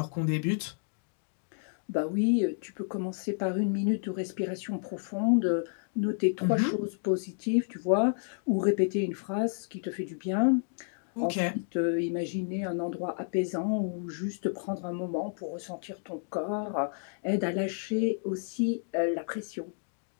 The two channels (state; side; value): silent; right; digital silence